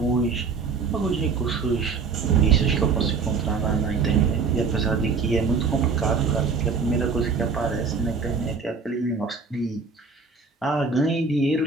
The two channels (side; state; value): left; quieter; 5.0 dB